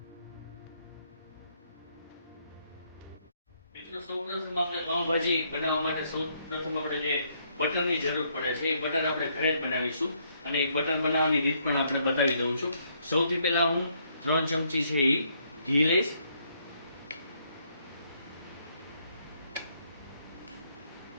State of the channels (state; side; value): inverted; both; correlation -0.71